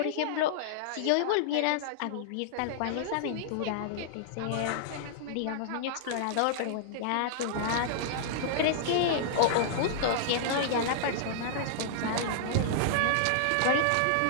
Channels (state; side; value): different; both; correlation -0.02